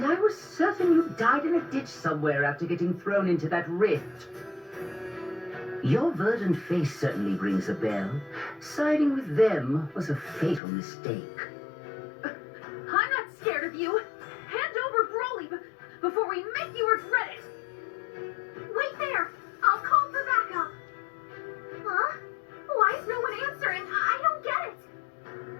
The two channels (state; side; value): drops out; right; at 10.6 s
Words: I was certain you died in a ditch somewhere after getting thrown into that rift. Your verdant face certainly rings a bell. Siding with them was a fatal mistake. I'm not scared of you. Hand over Broly before we make you regret it. Wait there. I'll call for backup. Huh? Why is no one answering? I don't get it.